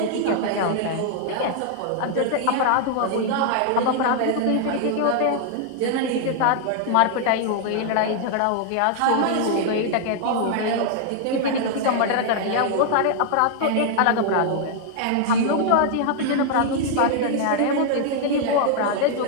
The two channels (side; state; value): both; different; correlation 0.00